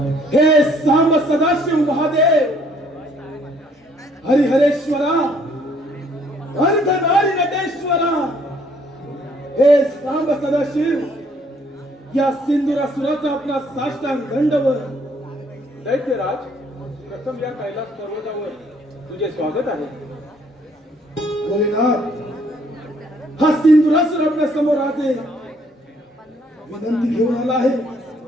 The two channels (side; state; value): both; normal; correlation 0.64